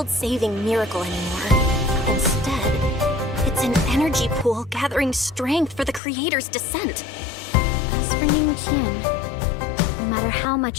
miracle anymore. Instead, it's an energy pool gathering strength for the creator's descent. As for Ning Qian, no matter how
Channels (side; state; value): right; drops out; at 6.0 s